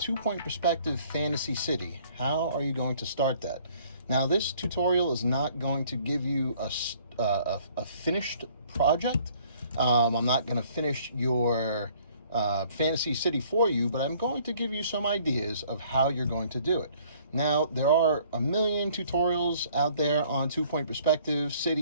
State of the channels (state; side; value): inverted; both; correlation -0.59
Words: perspective fantasy city. How are you going to start that? Now, this tutorial is not going to give you a finished project. I'm not going to finish your fantasy city for you, but I'm going to give you some ideas of how you're going to do it. Now, there are a million tutorials out there on 2-point perspective